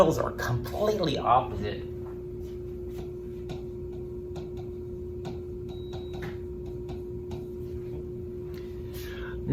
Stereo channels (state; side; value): identical; both; correlation 1.00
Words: are completely opposite.